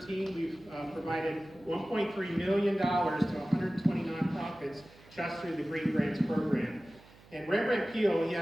we've provided $1.3 million to 120 nonprofits just through the green grants program. And Rembrandt Peale, he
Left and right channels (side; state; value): right; noise; hum, 24 dB below the sound